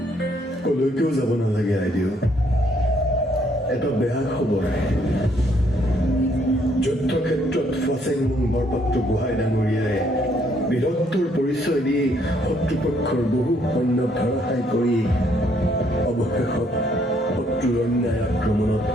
কলৈকেও যাব নালাগে আইদেউ এটা বেয়া খবৰ যুদ্ধক্ষেত্ৰত ফাচেংমুং বৰপাত্ৰ গোহাঁই ডাঙৰীয়াই বীৰত্বৰ পৰিচয় দি শত্ৰুপক্ষৰ বহু সৈন্য ধাৰাশায়ী কৰি অৱশেষত শত্ৰুৰ অন্যায় আক্ৰমণত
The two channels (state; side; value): normal; both; correlation 0.68